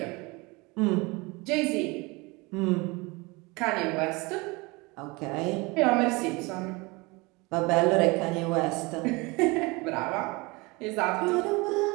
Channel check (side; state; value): left; quieter; 25.4 dB